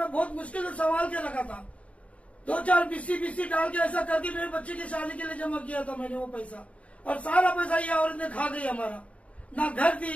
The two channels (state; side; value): late; right; 0.065 ms